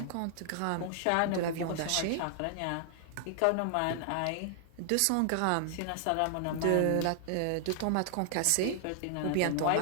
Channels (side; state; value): both; different; correlation 0.00